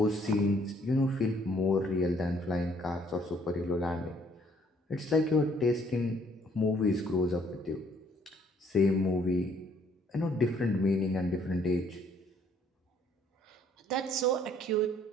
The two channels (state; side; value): normal; both; correlation 0.63